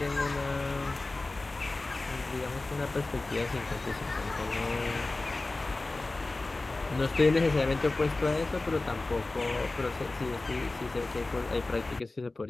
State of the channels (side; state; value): right; quieter; 3.2 dB